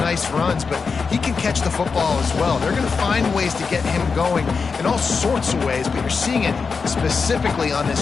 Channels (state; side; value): quieter; right; 5.1 dB